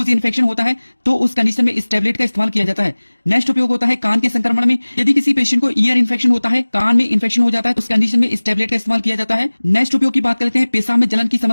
इन्फेक्शन होता है तो उस कंडीशन में इस टैबलेट का इस्तेमाल किया जाता है। नेक्स्ट उपयोग होता है कान के संक्रमण में, यदि किसी पेशेंट को ईयर इन्फेक्शन होता है, कान में इन्फेक्शन हो जाता है तो उस कंडीशन में इस टैबलेट का इस्तेमाल किया जाता है। नेक्स्ट उपयोग की बात कर लेते हैं पेशाब में जलन की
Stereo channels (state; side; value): inverted; both; correlation -1.00